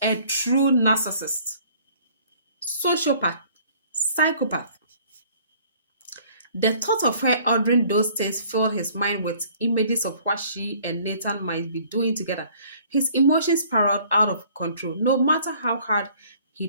a true narcissist, sociopath, psychopath. The thought of her ordering those things filled his mind with images of what she and Nathan might be doing together. His emotions spiraled out of control, no matter how hard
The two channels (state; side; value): inverted; both; correlation -0.56